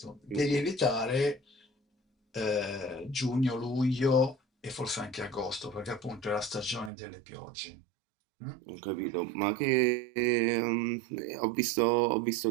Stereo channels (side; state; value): left; drops out; at 6.9 s